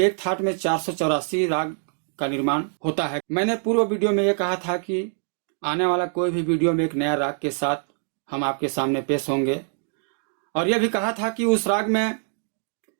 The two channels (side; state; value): left; silent; digital silence